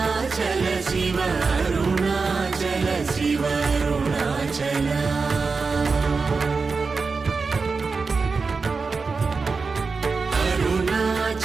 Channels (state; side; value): quieter; left; 4.5 dB